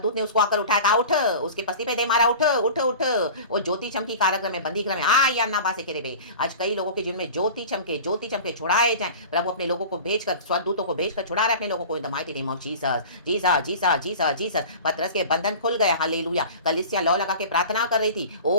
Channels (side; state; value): both; inverted; correlation -0.37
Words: ने उसको आकर उठाया, कहा उठ, उसके पस्ती पे दे मारा, उठ उठ उठ। वो ज्योति चमकी कारागृह में, बंदी गृह में, आ या ना बासे के रे। आज कई लोगों के जीवन में ज्योति चमके छुड़ाए जाए। प्रभु अपने लोगों को भेजकर, स्वर्गदूतों को भेजकर छुड़ा रहे अपने लोगों को इन the mighty name of Jesus, Jesus Jesus Jesus Jesus. पतरस के बंधन खुल गए, हालेलुया। कलीसिया लौ लगा के प्रार्थना कर रही थी।